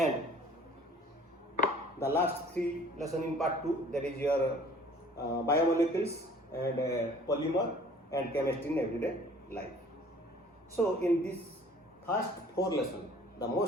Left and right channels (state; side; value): normal; both; correlation 0.52